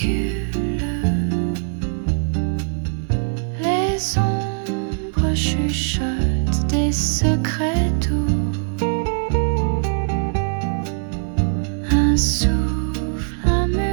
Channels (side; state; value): left; silent; 65 dB below the other